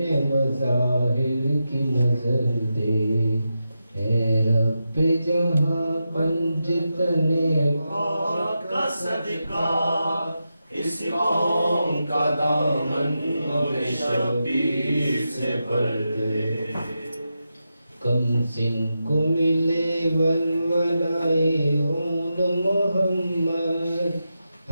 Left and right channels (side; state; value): both; inverted; correlation -0.88